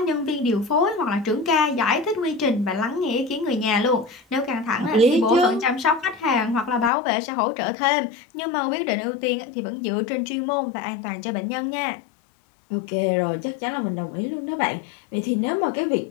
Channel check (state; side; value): drops out; right; at 6.9 s